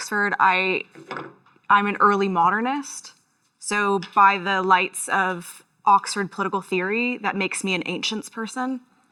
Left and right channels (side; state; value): both; identical; correlation 1.00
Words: I'm an early modernist. So by the lights of Oxford political theory, that makes me an ancients person.